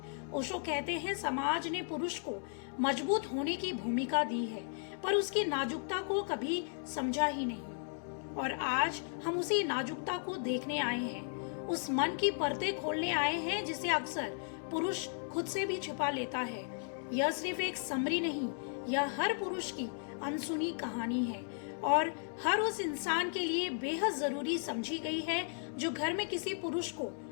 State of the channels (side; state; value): right; silent; 54 dB below the other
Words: ओशो कहते हैं, समाज ने पुरुष को मजबूत होने की भूमिका दी है, पर उसकी नाजुकता को कभी समझा ही नहीं। और आज हम उसी नाजुकता को देखने आए हैं, उस मन की परतें खोलने आए हैं जिसे अक्सर पुरुष खुद से भी छिपा लेता है। यह सिर्फ एक समरी नहीं, यह हर पुरुष की अनसुनी कहानी है और हर उस इंसान के लिए बेहद जरूरी समझी गई है जो घर में किसी पुरुष को